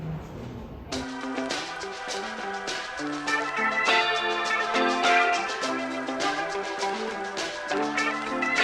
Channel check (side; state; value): both; identical; correlation 1.00